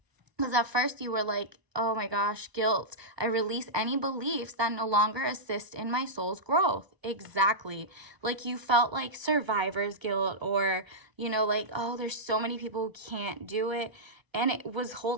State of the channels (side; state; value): left; late; 1.0 ms